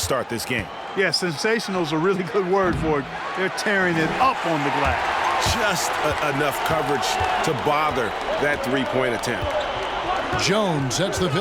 this game. Yeah, sensational is a really good word for it. They're tearing it up on the glass. Just enough coverage to bother that three-point attempt. Jones sets the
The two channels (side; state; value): both; identical; correlation 1.00